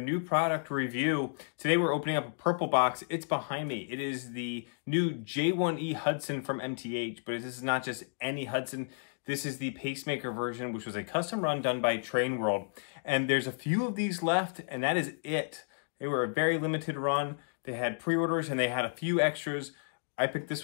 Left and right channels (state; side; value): silent; right; digital silence